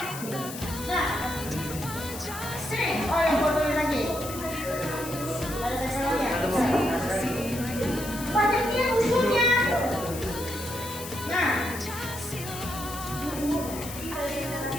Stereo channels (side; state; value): left; noise; hiss, 11 dB below the sound